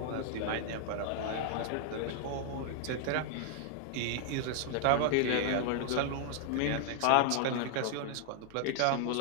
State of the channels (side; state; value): both; different; correlation 0.00